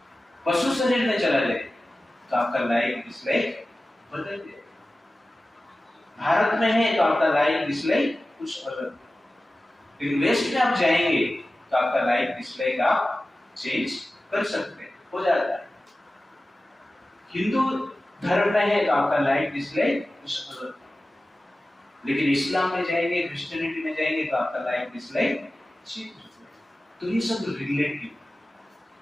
पशु शरीर में चला जाए तो आपका लाइक डिसलाइक बदल जाए। भारत में है तो आपका लाइक डिसलाइक कुछ अलग, लेकिन वेस्ट में आप जाएंगे तो आपका लाइक डिसलाइक आप चेंज कर सकते हैं, हो जाता है। हिंदू धर्म में है तो आपका लाइक डिसलाइक कुछ अलग, लेकिन इस्लाम में जाएंगे, क्रिश्चियनिटी में जाएंगे तो आपका लाइक डिसलाइक चेंज हो जाएगा। तो ये सब रिलेटिव,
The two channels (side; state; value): both; normal; correlation 0.95